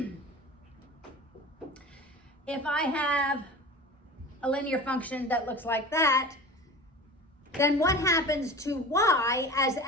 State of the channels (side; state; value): both; normal; correlation 0.35